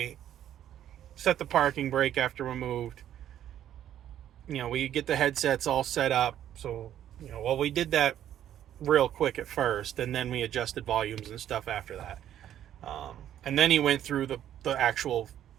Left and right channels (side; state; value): left; quieter; 11.0 dB